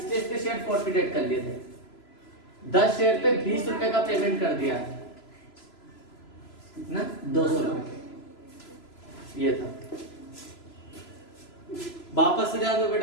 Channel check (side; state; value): right; late; 3.0 ms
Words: इसके शेयर फॉरफिटेड कर लिए थे, 10 शेयर पे 20 रुपए का पेमेंट कर दिया, कितना 200 रुपए ये था। वापस से जाओ